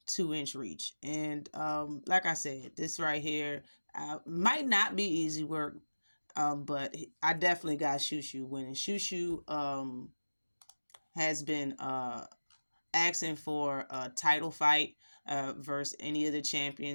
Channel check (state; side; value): inverted; both; correlation -1.00